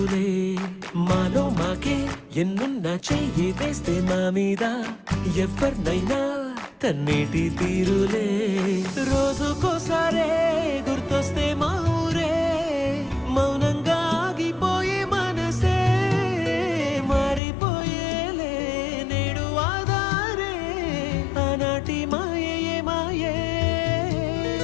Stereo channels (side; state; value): right; drops out; at 17.4 s